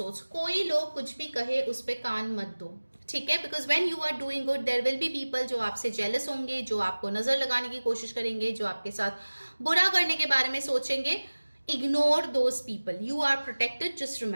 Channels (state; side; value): inverted; both; correlation -1.00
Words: कोई लोग कुछ भी कहे उस पे कान मत दो, ठीक है, because when you are doing good there will be people जो आपसे जेलस होंगे, जो आपको नजर लगाने की कोशिश करेंगे, जो आपके साथ बुरा करने के बारे में सोचेंगे। Ignore those people, you are protected, just